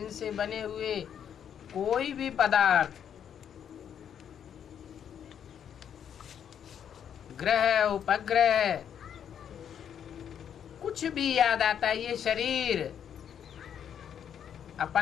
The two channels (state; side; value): quieter; right; 8.8 dB